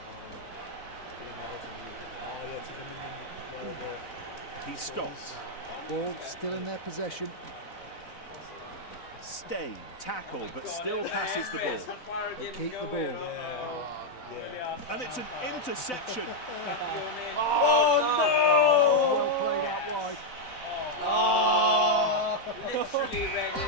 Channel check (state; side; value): late; right; 4.0 ms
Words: He stops. Ball still in their possession. Stain, tackle, but still passes the ball. They keep the ball. And it's an interception. Well played out wide. Literally ready.